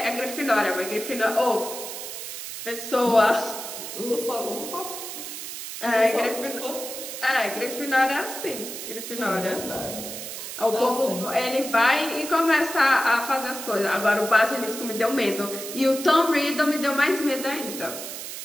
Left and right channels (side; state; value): right; noise; hiss, 8 dB below the sound